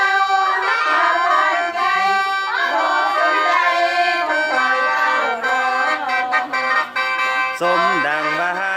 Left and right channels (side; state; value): both; identical; correlation 1.00